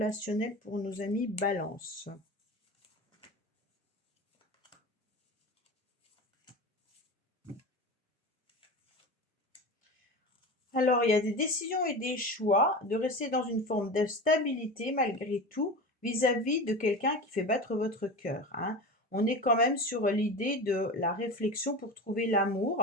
pour nos amis balance? Alors, il y a des décisions et des choix de rester dans une forme de stabilité malgré tout vis-à-vis de quelqu'un qui fait battre votre cœur, hein. On est quand même sur l'idée de la réflexion pour trouver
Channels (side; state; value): both; normal; correlation 0.28